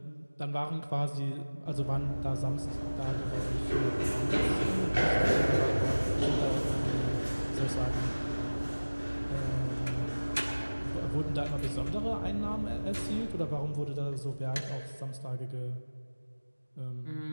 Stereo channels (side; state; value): both; inverted; correlation -1.00